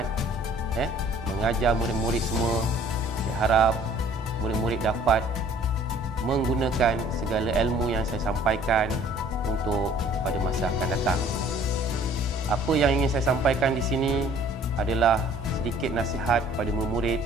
mengajar murid-murid semua. Saya harap murid-murid dapat menggunakan segala ilmu yang saya sampaikan untuk pada masa akan datang. Apa yang ingin saya sampaikan di sini adalah sedikit nasihat pada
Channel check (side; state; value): both; normal; correlation 0.54